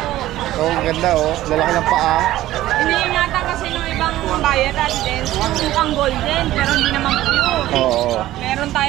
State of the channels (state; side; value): quieter; left; 14.9 dB